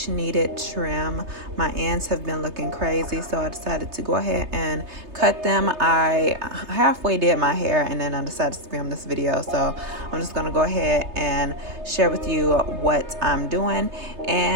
needed trim. My ends have been looking crazy, so I decided to go ahead and cut them. I halfway did my hair and then I decided to film this video, so I'm just going to go ahead and share with you what I'm doing.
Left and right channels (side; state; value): left; late; 3.3 ms